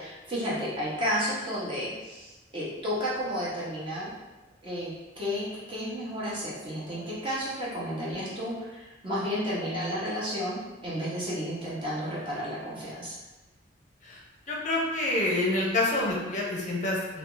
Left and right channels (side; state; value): both; normal; correlation 0.26